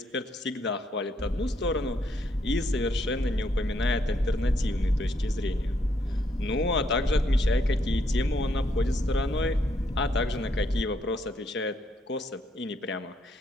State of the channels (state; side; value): normal; both; correlation 0.74